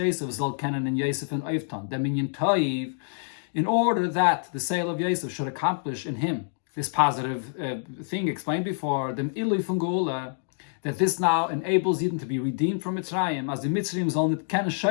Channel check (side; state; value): right; silent; digital silence